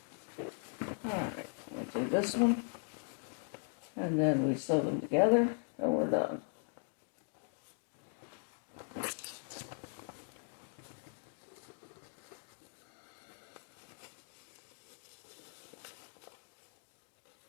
All right, we'll do this one, and then we sew them together, and we're done.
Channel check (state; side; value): silent; right; 52 dB below the other